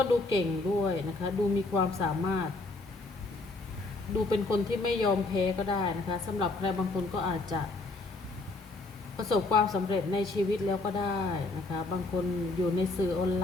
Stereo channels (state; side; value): quieter; right; 3.2 dB